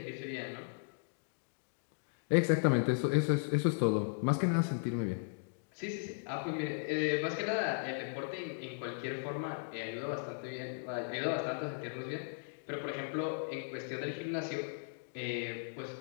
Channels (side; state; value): right; silent; digital silence